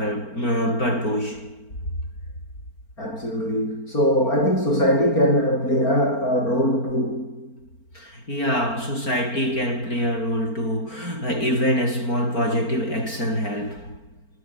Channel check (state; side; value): late; right; 4.4 ms